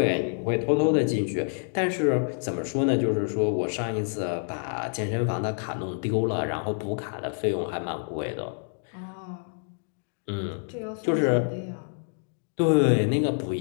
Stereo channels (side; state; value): right; silent; 60 dB below the other